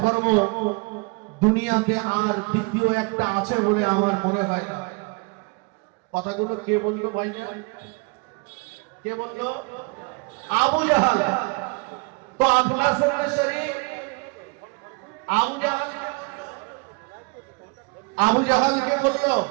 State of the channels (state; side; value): quieter; left; 29.1 dB